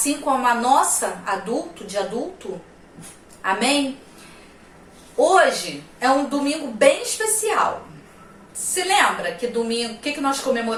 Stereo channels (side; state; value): both; identical; correlation 1.00